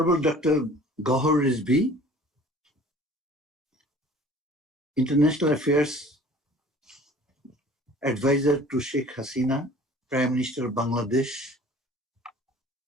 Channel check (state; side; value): normal; both; correlation 0.48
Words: Dr. Gohar Rizvi, International Affairs Advisor to Sheikh Hasina, Prime Minister of Bangladesh,